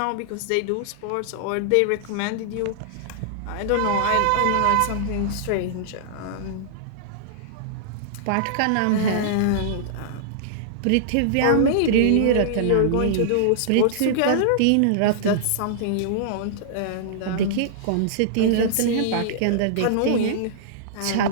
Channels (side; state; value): both; different; correlation -0.01